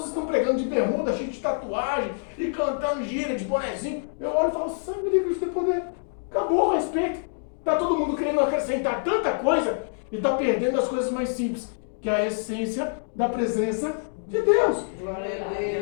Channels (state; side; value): silent; right; digital silence